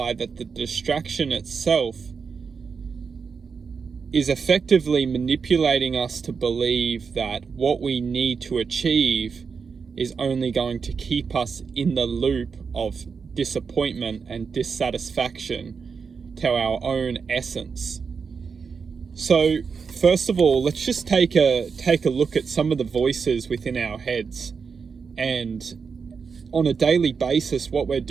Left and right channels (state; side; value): quieter; left; 5.6 dB